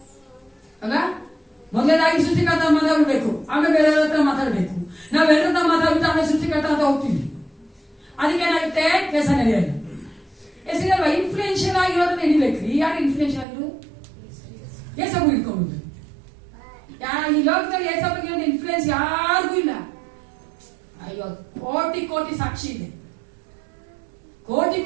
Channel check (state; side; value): drops out; left; at 13.5 s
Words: ಅಲ್ಲ. ಮೊದಲನೇದಾಗಿ ಸೃಷ್ಟಿಕರ್ತ ಮಾತಾಡ್ಬೇಕು, ಆಮೇಲೆ ಬೇರೆಯವ್ರ ಹತ್ರ ಮಾತಾಡ್ಬೇಕು. ನಾವೆಲ್ಲರ ಹತ್ರ ಮಾತಾಡ್ಬಿಟ್ಟು ಆಮೇಲೆ ಸೃಷ್ಟಿಕರ್ತ ಅಂತ ಹೋಗ್ತೀವಿ. ಅದಕ್ಕೆ ಏನಾಗುತ್ತೆ, ಕೆಲಸ ನಡೆಯಲ್ಲ. ಹೆಸರಲ್ವ ಇನ್ಫ್ಲೂಯೆನ್ಷಿಯಲ್ ಆಗಿರೋದನ್ನ ಹಿಡಿಬೇಕ್ರಿ. ಯಾರು ಇನ್ಫ್ಲೂಯೆನ್ಷಿಯಲ್ ಆಗಿರು? ಏಸಪ್ಪು ಇಟ್ಕೊಂಡು. ಈ ಲೋಕದಲ್ಲಿ ಏಸಪ್ಪಿಗೆ ಒಂದು ಇನ್ಫ್ಲೂಯೆನ್ಸ್ ಯಾರಿಗೂ ಇಲ್ಲ. ಅಯ್ಯೋ, ಕೋಟಿ ಕೋಟಿ ಸಾಕ್ಷಿ ಇದೆ, ಕೋಟಿ